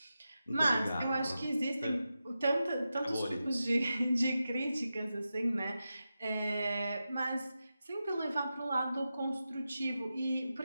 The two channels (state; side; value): inverted; both; correlation -0.91